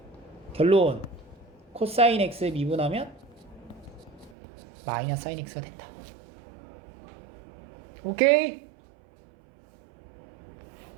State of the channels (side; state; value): left; drops out; at 4.4 s